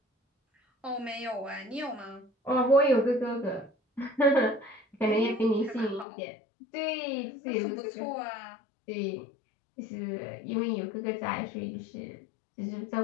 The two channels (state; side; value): drops out; right; at 6.1 s